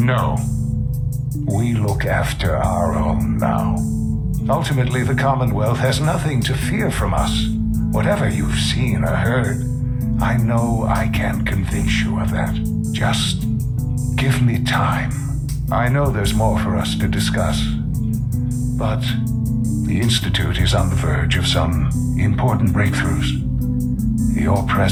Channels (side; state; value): both; identical; correlation 1.00